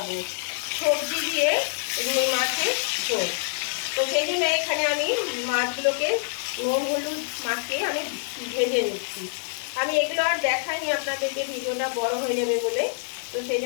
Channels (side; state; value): right; silent; digital silence